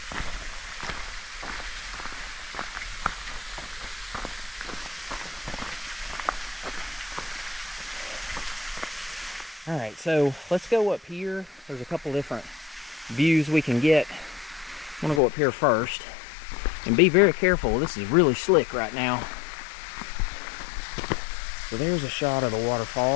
All right, so let's go up here. There's a couple different views we can get. I'm gonna go up here first and be very careful. This is really slick right now. So there's a shot of the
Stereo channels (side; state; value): right; drops out; at 15.2 s